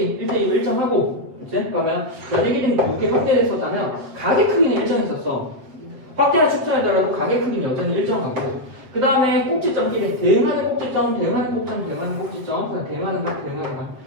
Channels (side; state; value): left; late; 7.8 ms